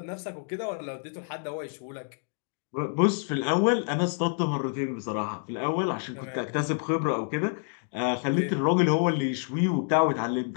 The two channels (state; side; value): silent; right; 59 dB below the other